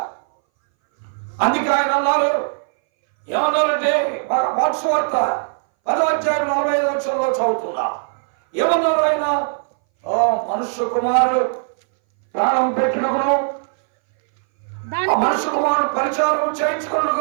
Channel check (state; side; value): silent; left; 62 dB below the other